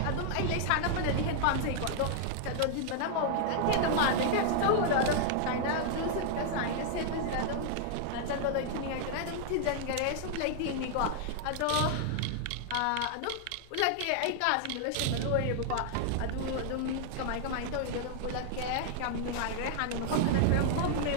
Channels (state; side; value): different; both; correlation -0.01